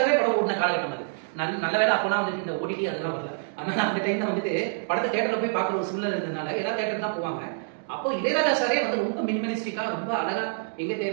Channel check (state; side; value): silent; left; digital silence